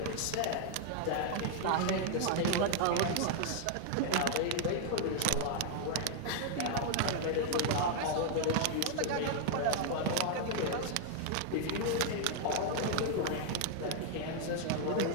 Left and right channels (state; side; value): different; both; correlation 0.00